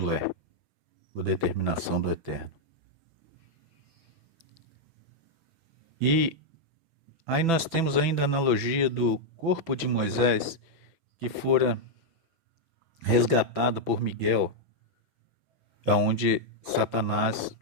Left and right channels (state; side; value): late; left; 6.0 ms